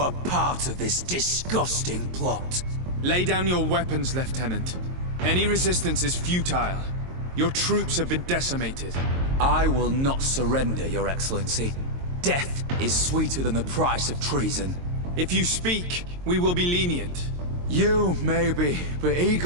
part of this disgusting plot. Lay down your weapons, Lieutenant. Any resistance is futile. Your troops have been decimated. I will not surrender, Your Excellency. Death is sweeter than the price of treason. If you speak, we will be lenient. You, maybe, but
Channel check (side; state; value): left; late; 22 ms